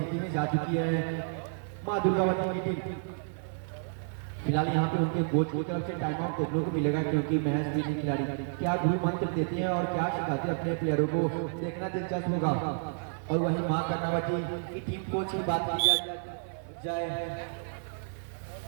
में जा चुकी है मां दुर्गावती की टीम। फिलहाल यहाँ पे उनके कोच की तरफ से टाइम आउट देखने को मिलेगा क्योंकि महज 3 खिलाड़ी क्या गुरु मंत्र देते हैं और क्या सिखाते हैं अपने प्लेयरों को, देखना दिलचस्प होगा। और वही मां कर्णावती की टीम कोच की बात की जाए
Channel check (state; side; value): silent; left; digital silence